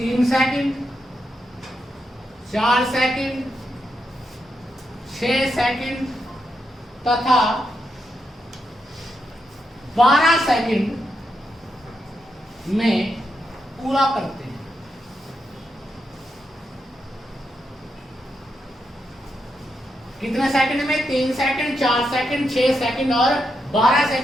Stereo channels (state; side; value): normal; both; correlation 0.83